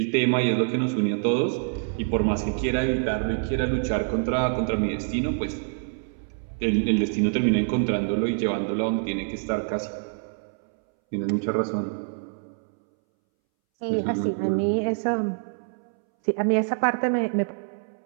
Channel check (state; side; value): silent; left; 61 dB below the other